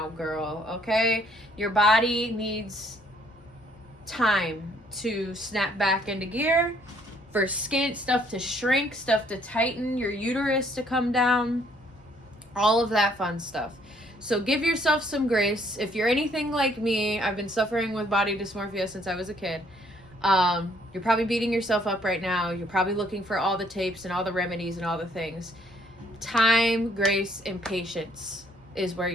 girl, okay? Your body needs time to snap back into gear, for skin stuff to shrink, stuff to tighten, your uterus to come down, all of that fun stuff. So give yourself some grace. If you're anything like me, I've been suffering with body dysmorphia since I was a kid. You're probably beating yourself up right now. You're probably looking for all the tapes and all the remedies and all the things. Time, grace, and patience is where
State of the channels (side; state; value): both; normal; correlation 0.65